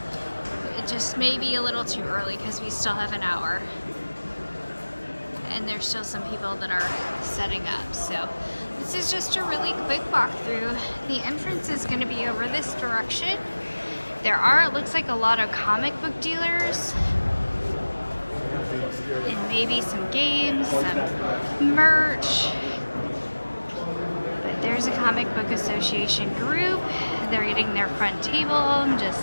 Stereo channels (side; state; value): both; inverted; correlation -1.00